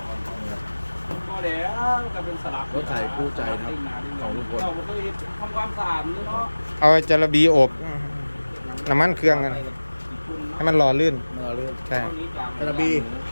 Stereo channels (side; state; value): both; inverted; correlation -1.00